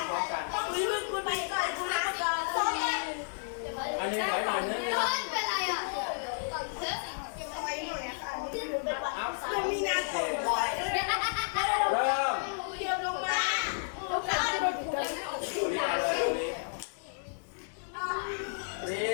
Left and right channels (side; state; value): right; silent; digital silence